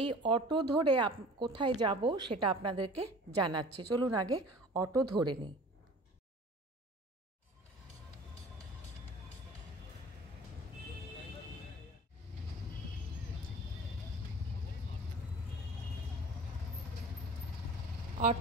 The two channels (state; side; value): normal; both; correlation 0.43